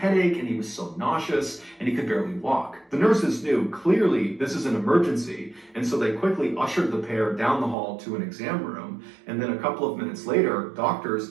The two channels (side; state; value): left; drops out; at 7.8 s